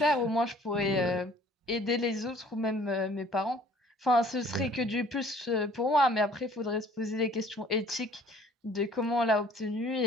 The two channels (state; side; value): normal; both; correlation 0.54